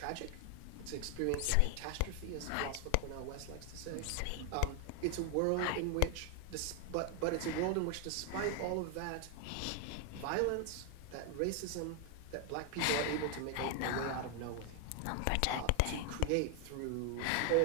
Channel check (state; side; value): different; both; correlation 0.00